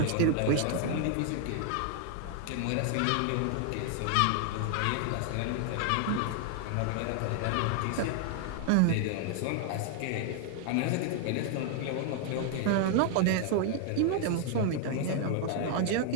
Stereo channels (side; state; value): both; different; correlation 0.00